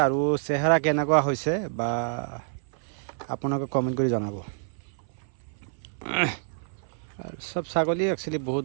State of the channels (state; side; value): silent; left; 58 dB below the other